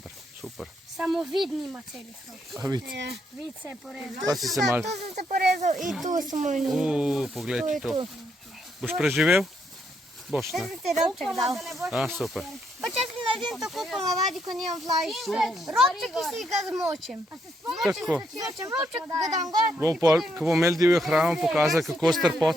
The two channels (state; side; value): normal; both; correlation 0.76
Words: super. Samo vid nima celih rok. A vidi, Vid se je porezal. pa si se mal... Tu sem se porezal in tu sem moj njim. Poglej to. Boš preživel? Boš, ne? Ti robček dal. A, super. Pa če si naredim tako ponavadi, ko nimam vlažiš. Robček, ki si ga zmočim. Tako. Zmočim robček, ga dam gor. Bomo pol, ko bomo imeli divjo hrano, pokazali, kako s